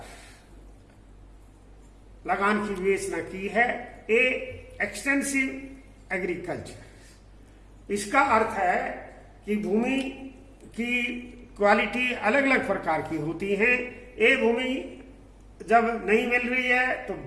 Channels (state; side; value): identical; both; correlation 1.00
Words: लगान की विवेचना की है। ए एक्सटेंसिव एग्रीकल्चर, इसका अर्थ है कि भूमि की क्वालिटी अलग अलग प्रकार की होती है। ए भूमि जब नहीं मिल रही है तो